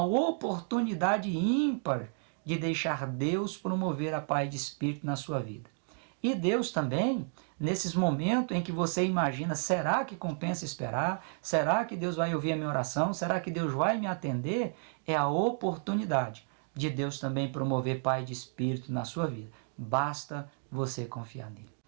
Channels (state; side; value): silent; left; 56 dB below the other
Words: oportunidade ímpar de deixar Deus promover a paz de espírito na sua vida. E Deus também, nesses momentos em que você imagina, será que compensa esperar? Será que Deus vai ouvir a minha oração? Será que Deus vai me atender? É a oportunidade de Deus também promover paz de espírito na sua vida. Basta você confiar nele.